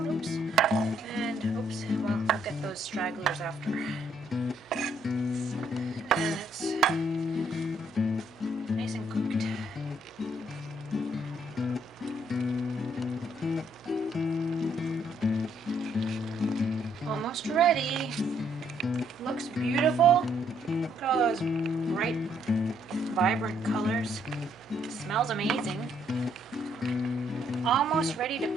Oops. And oops, well, we'll get those stragglers after. And it's nice and cooked. Almost ready. Looks beautiful. Look at all those bright, vibrant colors. It smells amazing. Almost ready to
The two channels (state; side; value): normal; both; correlation 0.70